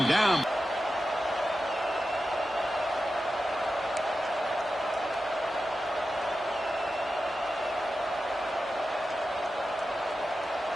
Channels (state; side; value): normal; both; correlation 0.92